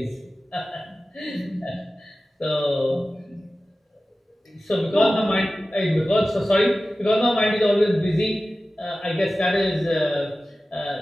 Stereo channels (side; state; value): both; normal; correlation 0.95